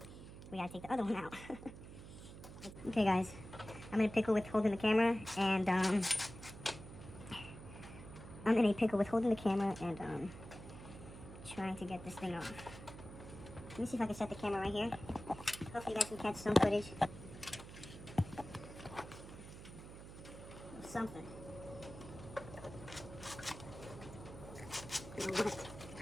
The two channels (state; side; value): noise; right; hum, 13 dB below the sound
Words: we gotta take the other one out. Okay, guys. I'm in a pickle with holding the camera, and, trying to get this thing off. Let me see if I can set the camera right here. Hopefully you guys can catch some footage. Something.